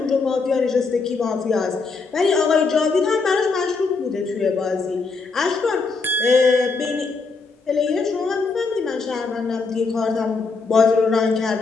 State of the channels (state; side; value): quieter; right; 4.4 dB